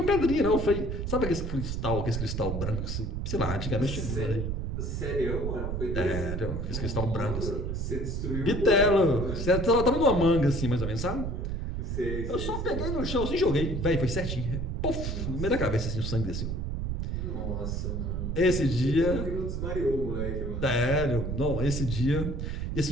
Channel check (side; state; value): right; noise; rumble, 2 dB below the sound